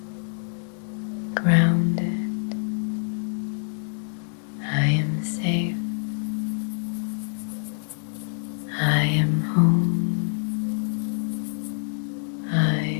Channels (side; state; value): right; silent; 60 dB below the other